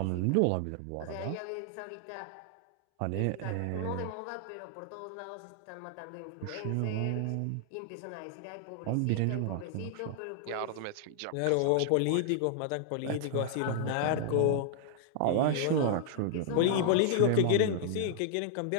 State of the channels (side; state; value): both; different; correlation -0.01